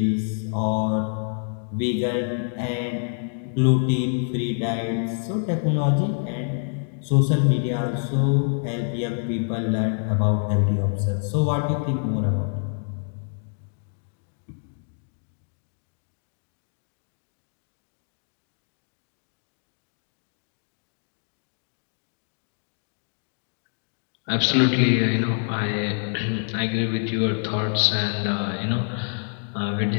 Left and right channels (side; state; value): right; silent; digital silence